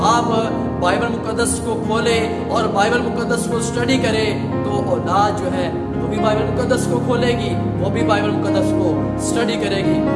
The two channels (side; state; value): both; identical; correlation 1.00